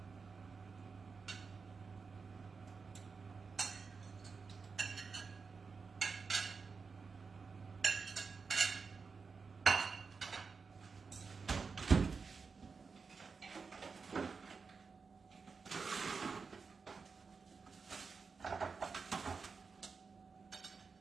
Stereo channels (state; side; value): quieter; left; 5.0 dB